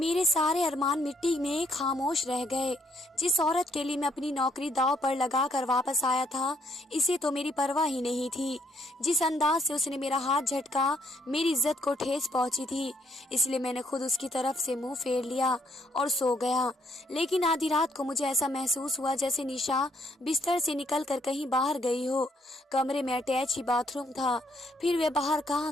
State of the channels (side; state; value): both; normal; correlation 0.70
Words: सारे अरमान मिट्टी में खामोश रह गए। जिस औरत के लिए मैं अपनी नौकरी दांव पर लगाकर वापस आया था, इसे तो मेरी परवाह ही नहीं थी। जिस अंदाज से उसने मेरा हाथ झटका, मेरी इज्जत को ठेस पहुंची थी, इसलिए मैंने खुद उसकी तरफ से मुंह फेर लिया और सो गया। लेकिन आधी रात को मुझे ऐसा महसूस हुआ जैसे निशा बिस्तर से निकलकर कहीं बाहर गई हो। कमरे में अटैच ही बाथरूम था, फिर वे बाहर